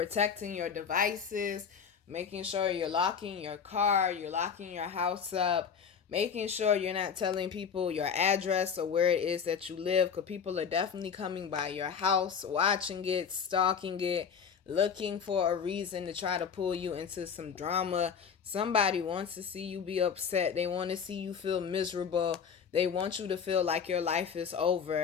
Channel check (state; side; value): quieter; right; 6.8 dB